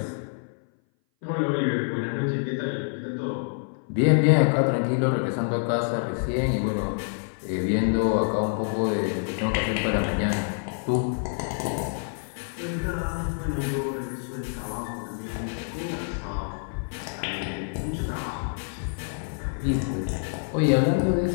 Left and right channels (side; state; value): right; silent; 58 dB below the other